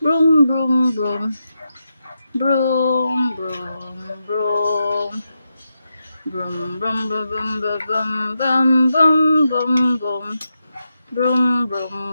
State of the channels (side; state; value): both; inverted; correlation -0.87